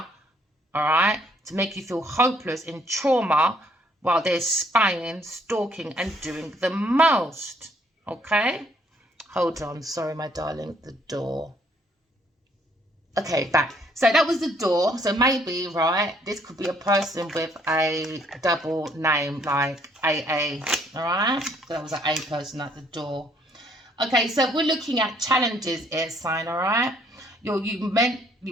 all right, to make you feel hopeless in trauma while they're spying, stalking, and doing the most, okay? Hold on, sorry, my darling, the door. Okay, back. So that was the door. So maybe, right, this could be a person with a double name like AA, all right? So that was an A person at the door. Okay, so we're looking at challenges, air sign, all right? You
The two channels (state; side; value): normal; both; correlation 0.65